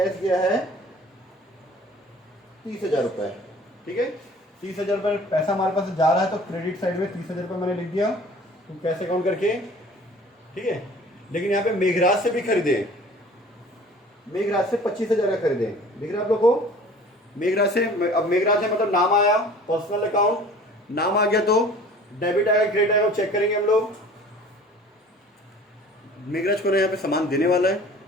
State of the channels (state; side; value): normal; both; correlation 0.47